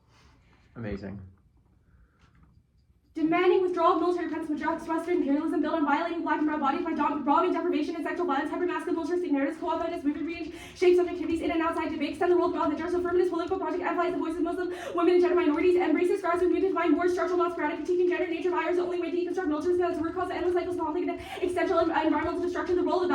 Amazing. Demanding withdrawal of military presence from Western imperialism built on violating black and brown bodies by robbing, deprivation, and sexual violence, hypermasculine militaristic narratives, co-opted movement range, shape subjectivities in and outside debate, extend the world beyond the jurist feminist political project, amplifies the voices of Muslim women and gender minorities, embraces grassroots movement to find more structural, not sporadic, critiquing gender nature of the only way to deconstruct militarism as a root cause of endless cycles of conflict and existential environmental destruction. The role of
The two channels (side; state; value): both; identical; correlation 1.00